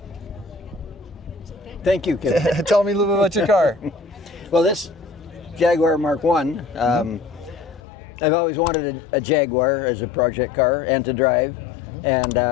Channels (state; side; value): drops out; right; at 7.8 s